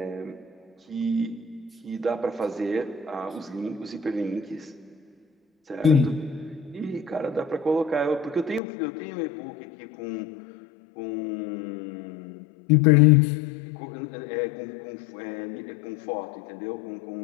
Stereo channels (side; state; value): right; drops out; at 8.6 s